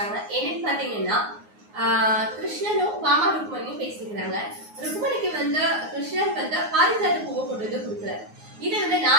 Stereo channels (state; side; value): late; left; 9.6 ms